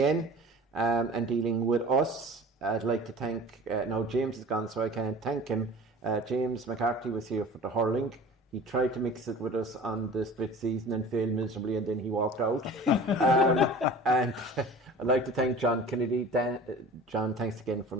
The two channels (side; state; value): both; normal; correlation 0.41